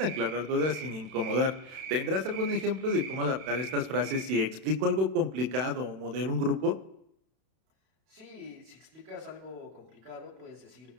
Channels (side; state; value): left; late; 32 ms